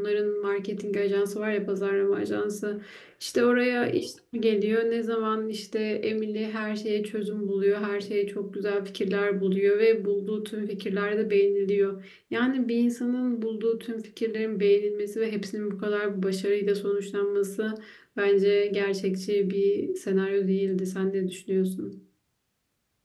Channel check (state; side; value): identical; both; correlation 1.00